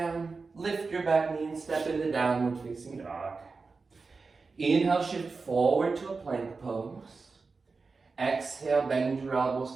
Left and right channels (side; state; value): left; quieter; 4.3 dB